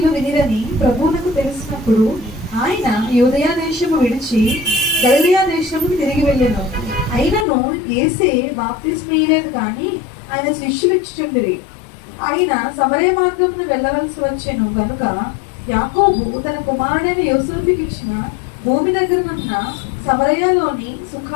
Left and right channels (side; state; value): right; drops out; at 7.5 s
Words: వినిరని ప్రభువునకు తెలిసినప్పుడు ఆయన యూదయా దేశము విడిచి గలిలయ దేశముకు తిరిగి వెళ్ళెను. అయినను యేసే బాప్తిస్మీయలేదు కానీ ఆయన శిష్యులు ఇచ్చుచుండిరి. ఆయన సమరయ మార్గమును వెళ్ళవలసి వచ్చెను గనుక యాకోబు తన కుమారుడైన యోసేపుకి ఇచ్చిన భూమి దగ్గరనున్న సమరయలోని